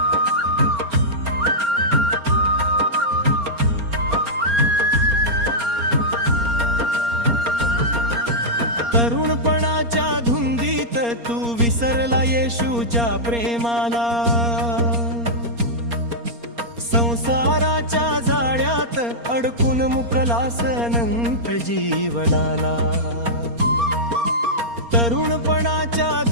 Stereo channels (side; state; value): left; late; 4.3 ms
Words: तरुणपणाच्या धुंदीत तू विसरला येशूच्या प्रेमाला. संसाराच्या जाळ्यात अडकून मुकलास अनंत जीवनाला. तरुणपणाच्या